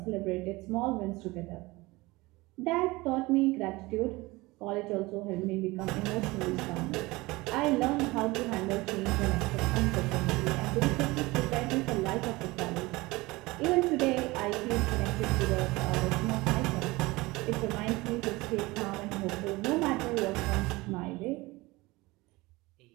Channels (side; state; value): left; quieter; 21.7 dB